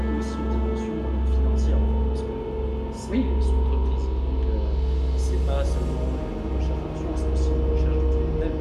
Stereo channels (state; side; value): identical; both; correlation 1.00